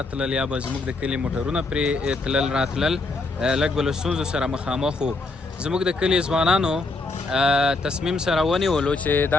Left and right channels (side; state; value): right; quieter; 3.4 dB